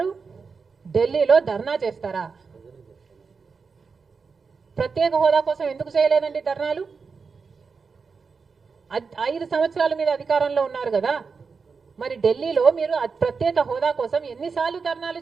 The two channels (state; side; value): quieter; left; 5.1 dB